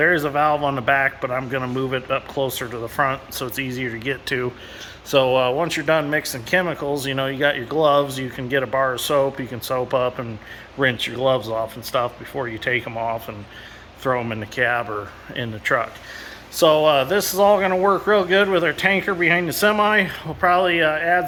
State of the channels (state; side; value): identical; both; correlation 1.00